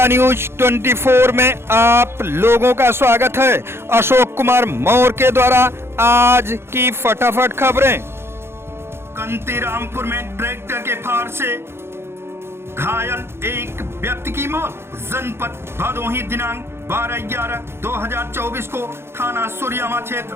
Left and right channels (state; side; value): late; left; 0.12 ms